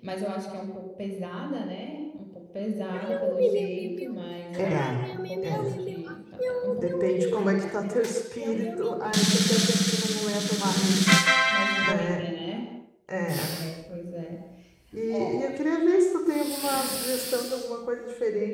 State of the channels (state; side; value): identical; both; correlation 1.00